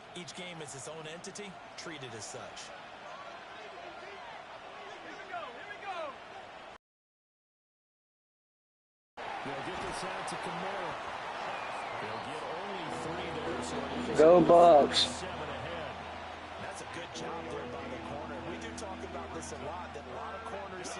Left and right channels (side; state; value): both; identical; correlation 1.00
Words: Each game is its own entity, treated as such. They'll get this out to Kamara. They'll get only 3 there. So Go Bucks. 7 ahead. That's a good job there by the corner. We do talk about this a lot, that a lot of corners